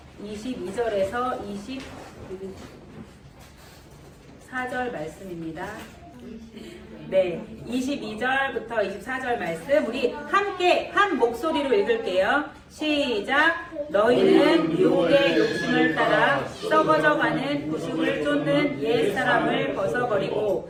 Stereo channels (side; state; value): both; identical; correlation 1.00